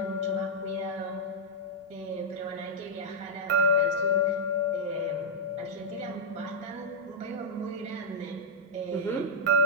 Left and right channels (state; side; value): normal; both; correlation -0.06